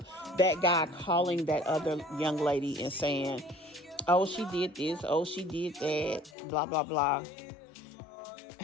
that guy calling that other young lady and saying, oh, she did this, oh, she did that, blah, blah, blah.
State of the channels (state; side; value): drops out; right; at 6.4 s